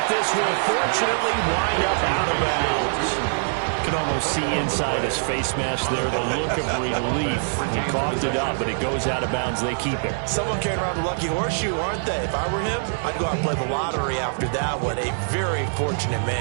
this will fortunately wind up out of bounds. You can almost see inside his face mask there the look of relief. He coughed it up, but it goes out of bounds. They keep it. Someone carrying around the lucky horseshoe, aren't they? If I were him, I'd go out and play the lottery after that one. A very fortunate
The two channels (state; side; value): silent; left; digital silence